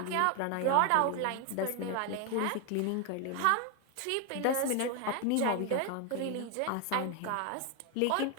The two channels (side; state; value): both; different; correlation 0.01